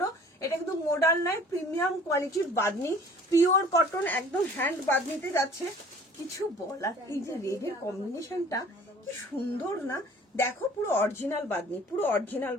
এটা কিন্তু মডাল নয়, প্রিমিয়াম কোয়ালিটির বাদনি, পিওর কটন, একদম হ্যান্ড বাদনিতে যাচ্ছে। কিছু বলার, এই যে রেডের কম্বিনেশনটা কি সুন্দর না, দেখো পুরো অরিজিনাল বাদনি, পুরো অরিজিনাল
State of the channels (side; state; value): both; normal; correlation 0.50